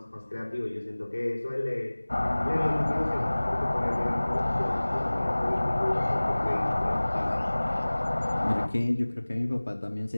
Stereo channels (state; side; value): inverted; both; correlation -1.00